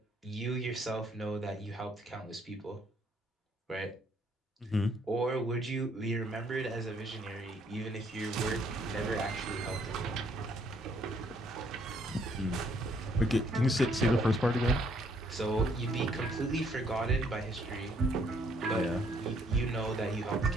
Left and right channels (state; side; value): normal; both; correlation 0.67